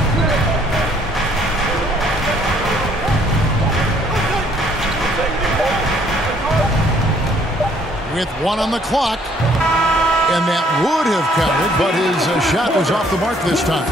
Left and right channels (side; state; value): both; normal; correlation 0.63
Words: With 1 on the clock, and that would have counted, but his shot was off the mark this time.